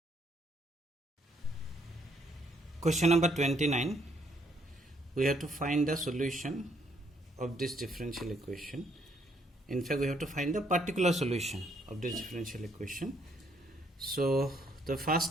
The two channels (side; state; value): both; normal; correlation 0.70